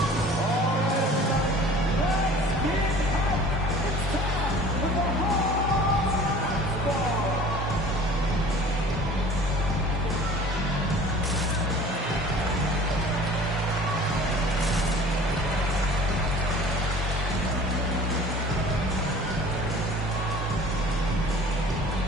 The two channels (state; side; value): normal; both; correlation 0.45